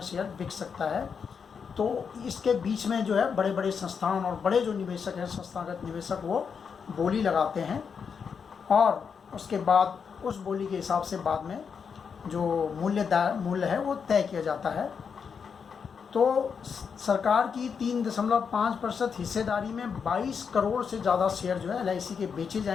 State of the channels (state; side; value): quieter; right; 6.3 dB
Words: शेयर बिक सकता है। तो इसके बीच में जो है बड़े बड़े संस्थान और बड़े जो निवेशक हैं, संस्थागत निवेशक, वो बोली लगाते हैं और उसके बाद उस बोली के हिसाब से बाद में जो मूल्य है वो तय किया जाता है। तो सरकार की 3.5% हिस्सेदारी में 22 करोड़ से ज़्यादा शेयर जो है LIC के बेचे